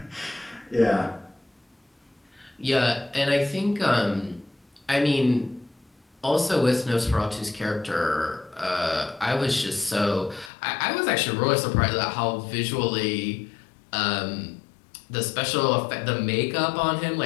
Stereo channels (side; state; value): right; drops out; at 10.5 s